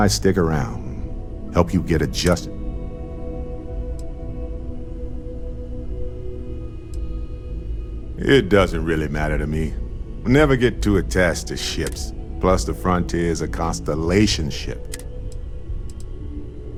stick around? Help you get adjusted. It doesn't really matter to me. Never get too attached to ships. Plus the Frontier is a constellation ship.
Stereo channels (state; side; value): identical; both; correlation 1.00